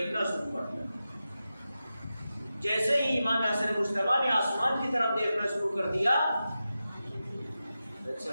شروع کر دیا۔ جیسے ہی امام حسن مجتبی نے آسمان کی طرف دیکھنا شروع کر دیا،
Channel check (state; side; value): inverted; both; correlation -0.92